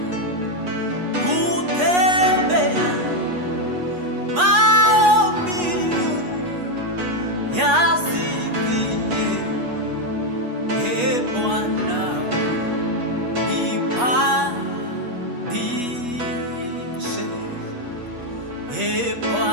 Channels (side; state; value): left; late; 8.3 ms